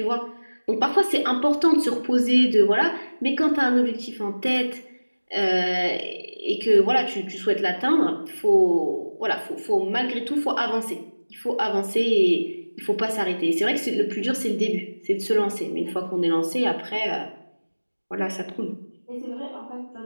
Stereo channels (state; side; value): inverted; both; correlation -1.00